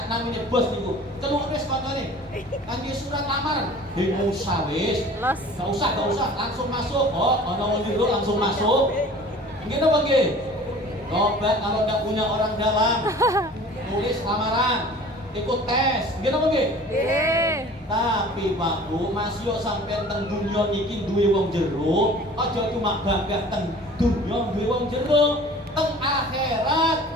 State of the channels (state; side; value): normal; both; correlation 0.45